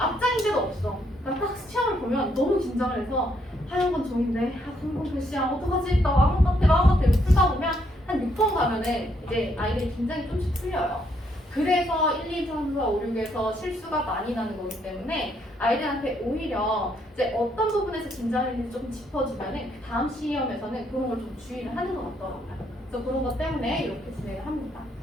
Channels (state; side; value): normal; both; correlation 0.73